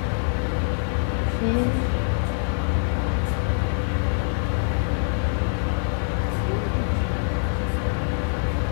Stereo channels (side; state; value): right; silent; 62 dB below the other